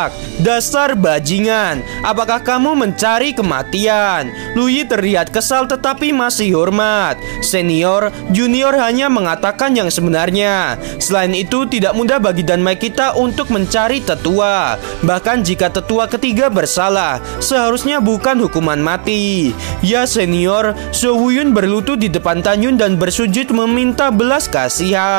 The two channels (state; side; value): silent; left; digital silence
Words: "Dasar bajingan, apakah kamu mencari kematian?" Luyi terlihat kesal tetapi masih hormat. Senior, junior hanya mengatakan yang sebenarnya. Selain itu, tidak mudah bagi Danmai kita untuk mencari tetua. Bahkan jika tetua ketiga bersalah, seharusnya bukan hukuman mati. Ya senior, So Wuyun berlutut di depan Tanyun dan bersujud meminta belas